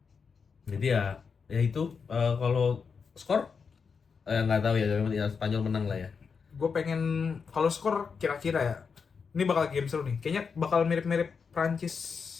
Jadi ya itu kalau skor nggak tahu ya Spanyol menang lah ya. Gue pengen kalau skor kira-kira ya. Ini bakal game seru nih. Kayaknya bakal mirip-mirip Prancis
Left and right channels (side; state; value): right; quieter; 5.7 dB